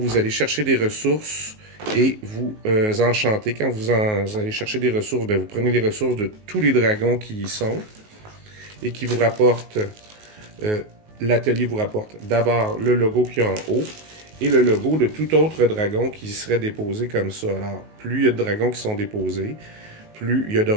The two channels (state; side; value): late; left; 19 ms